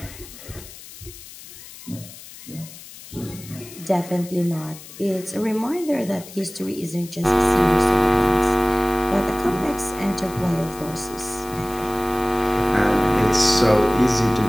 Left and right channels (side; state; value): left; noise; hiss, 17 dB below the sound